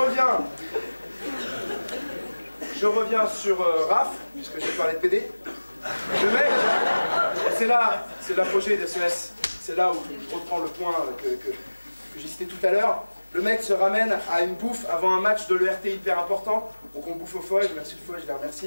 Je reviens sur Raph, puisque j'ai parlé de PD. Le mec, c'est l'apogée des SES. C'est là où je reprends le point que j'ai cité tout à l'heure. Le mec se ramène à une bouffe avant un match de l'ERT hyper important. Donc on bouffe au foie, merci le foie, je les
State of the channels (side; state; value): both; inverted; correlation -1.00